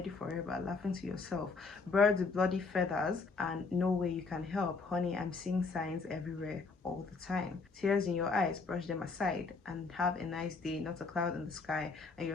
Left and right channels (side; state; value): right; quieter; 4.3 dB